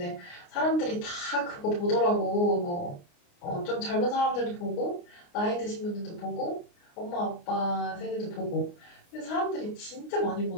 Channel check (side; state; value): right; late; 29 ms